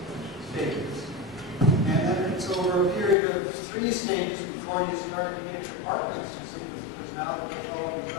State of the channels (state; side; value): drops out; right; at 3.2 s